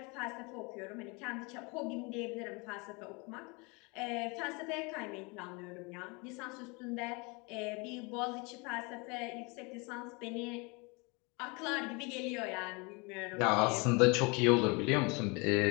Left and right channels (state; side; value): quieter; right; 28.9 dB